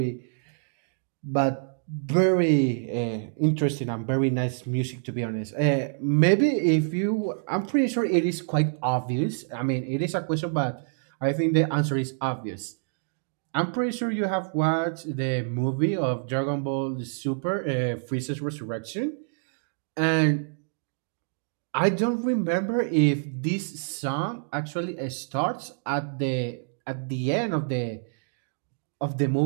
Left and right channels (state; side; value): silent; left; digital silence